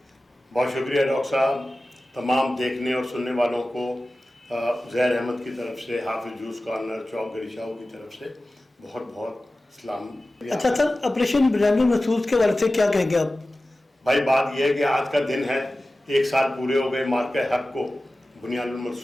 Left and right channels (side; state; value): both; normal; correlation 0.96